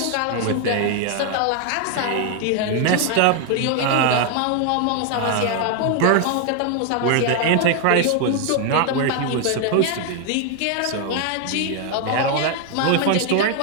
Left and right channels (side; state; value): both; different; correlation 0.00